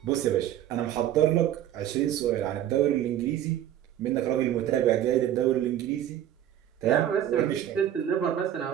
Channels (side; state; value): left; quieter; 11.4 dB